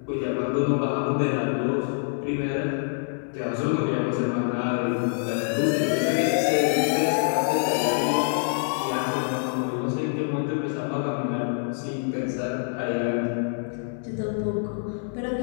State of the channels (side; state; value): right; silent; 61 dB below the other